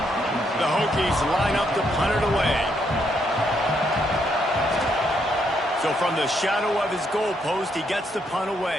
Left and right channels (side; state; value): both; normal; correlation 0.75